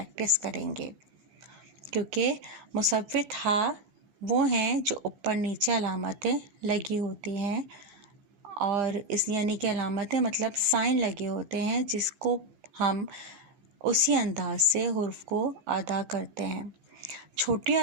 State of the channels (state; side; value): late; left; 14 ms